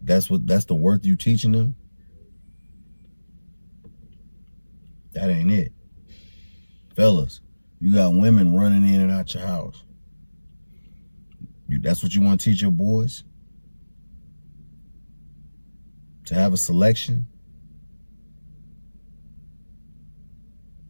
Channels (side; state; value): both; inverted; correlation -1.00